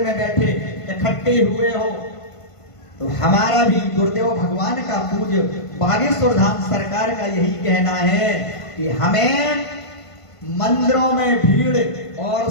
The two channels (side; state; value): right; late; 1.5 ms